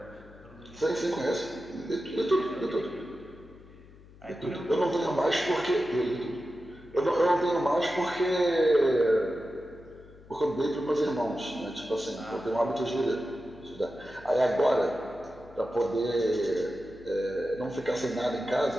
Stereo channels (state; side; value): noise; left; hum, 22 dB below the sound